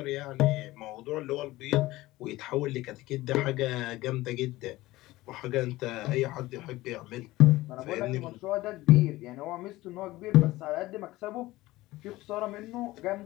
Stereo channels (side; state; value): right; quieter; 18.2 dB